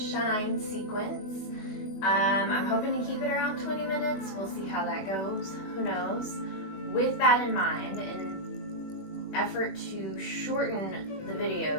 sequence. I'm hoping to keep it around 20 minutes. We'll see how that goes. Who knows? With that in mind, in effort to shorten the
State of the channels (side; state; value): right; late; 21 ms